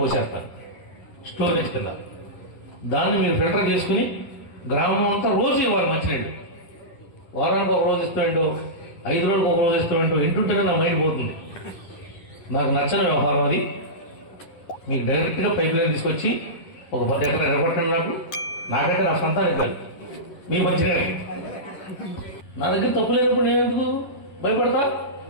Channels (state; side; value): late; right; 11 ms